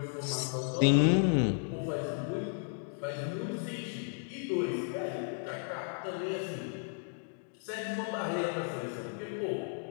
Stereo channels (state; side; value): silent; right; 55 dB below the other